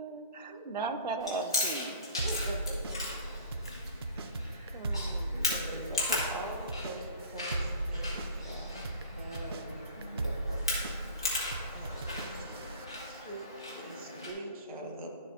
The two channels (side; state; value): both; inverted; correlation -0.42